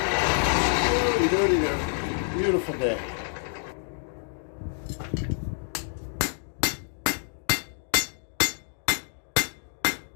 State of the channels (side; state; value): right; silent; digital silence